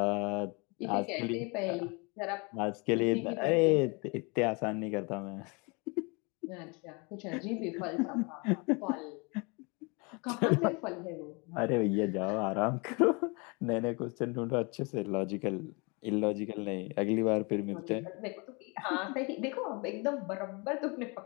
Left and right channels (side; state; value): right; quieter; 30.1 dB